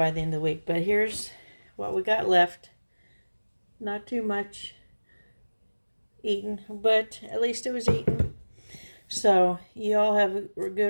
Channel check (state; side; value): inverted; both; correlation -1.00